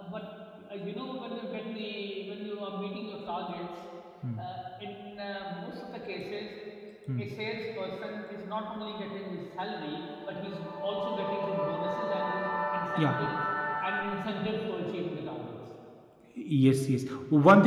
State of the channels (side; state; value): both; identical; correlation 1.00